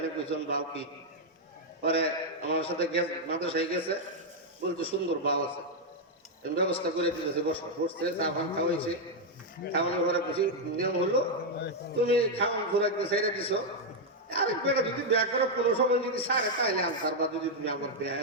কইছেন বাউ কি। পরে আমার সাথে মাদ্রাসায় গেছে, বলতে সুন্দর বাউ আছে, ব্যবস্থা করে দিতেছে, বসছে, চা পান খাওয়াইছে। খাওয়ানোর পরে খুশি নিয়ম হলো, তুমি খাওয়ান ঘোরাকে ছেড়ে দিছো, আরেক বেটা যদি বিয়া করো কোনো সময় যদি সারে তাইলে আনসার, বা যদি তুমি আমার বিয়া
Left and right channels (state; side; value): normal; both; correlation -0.01